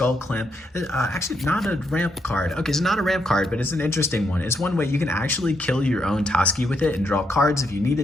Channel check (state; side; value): normal; both; correlation 0.78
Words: Clamp. Actually, not a ramp card. Okay, it's not a ramp card, but it's an interesting one. It's one way you can actually kill your own Toski with it and draw cards if you